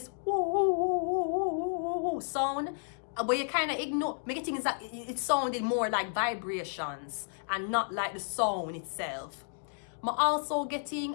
sound. But you kind of ignore. Me getting is that it sounded more like vibrations and not like the sound itself. Me also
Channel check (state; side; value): silent; right; digital silence